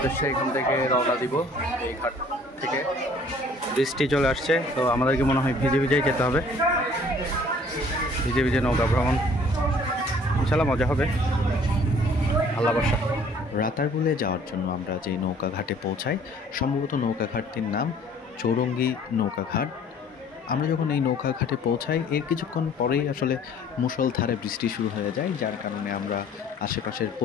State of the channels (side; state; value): both; normal; correlation 0.55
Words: এখান থেকে রওনা দিব। এই ঘাট থেকে বৃষ্টি চলে আসছে, তো আমাদেরকে মনে হয় ভিজে ভিজেই যেতে হবে। ভিজে ভিজে নৌকা ভ্রমণ ইনশাল্লাহ মজা হবে, আল্লাহ ভরসা। রাতারগুলে যাওয়ার জন্য আমরা যে নৌকা ঘাটে পৌঁছাই, সম্ভবত নৌকা ঘাটটির নাম চৌরঙ্গি নৌকা ঘাট। আমরা যখন এই নৌকা ঘাটে পৌঁছাই, এর কিছুক্ষণ পরেই আসলে মুষলধারে বৃষ্টি শুরু হয়ে যায়, যার কারণে আমরা আশেপাশের